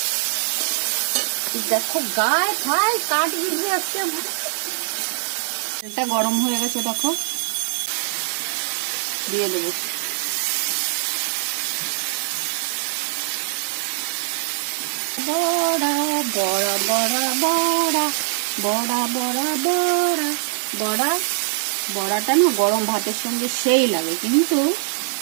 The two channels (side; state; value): left; silent; 64 dB below the other